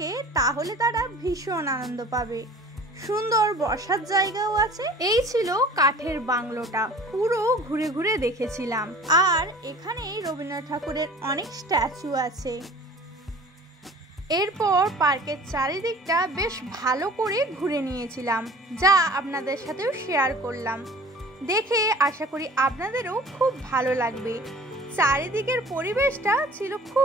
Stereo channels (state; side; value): normal; both; correlation 0.45